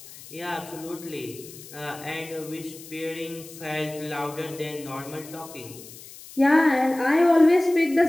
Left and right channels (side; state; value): left; noise; hiss, 17 dB below the sound